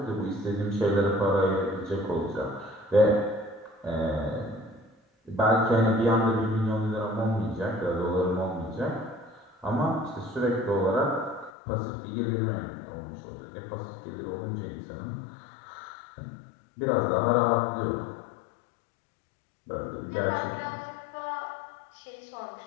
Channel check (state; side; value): drops out; right; at 11.5 s